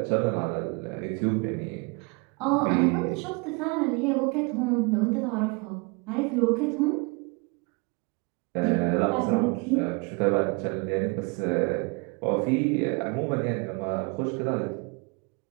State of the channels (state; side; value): quieter; left; 30.4 dB